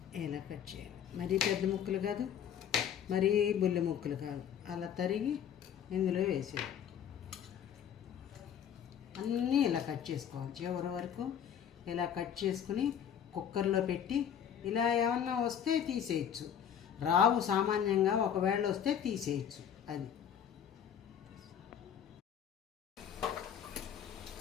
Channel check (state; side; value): quieter; right; 8.8 dB